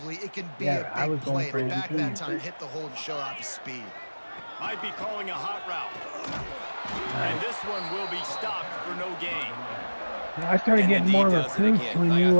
it can be Yeah, I a was big going play. for And it back too. that time, hit the hole and show off his speed. Might be calling a hot route. And this one will be stopped for no gain. I started And getting the D more does it recruits again. when Like, you I feel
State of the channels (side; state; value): both; inverted; correlation -1.00